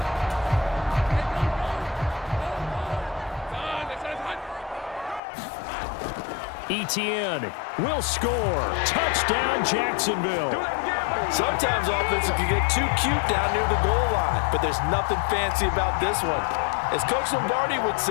Etienne will score. Touchdown, Jacksonville. Sometimes offense can get too cute down near the goal line, but there's nothing fancy about this one. As Coach Lombardi would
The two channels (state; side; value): drops out; right; at 5.2 s